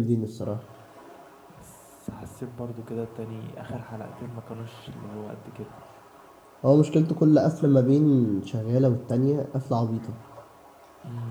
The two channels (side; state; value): both; identical; correlation 1.00